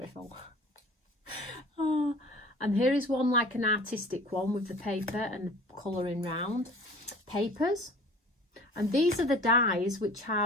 Oh, and here is one like an artistic one with the paper and the colouring round. Papers. And these are the dies which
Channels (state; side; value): normal; both; correlation 0.46